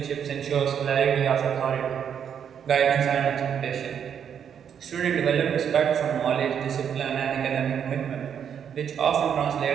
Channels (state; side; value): quieter; left; 8.2 dB